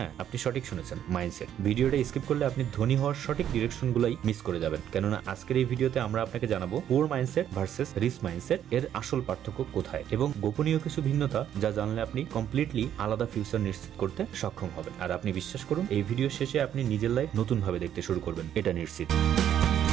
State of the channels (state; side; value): quieter; left; 10.2 dB